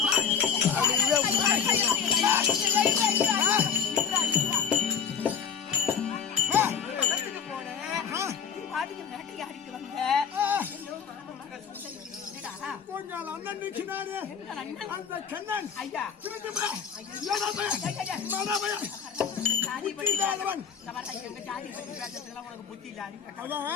உங்கள் அண்ணன் நிற்கிறாரு. அந்த கண்ணன் ஐயா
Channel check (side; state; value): right; quieter; 6.9 dB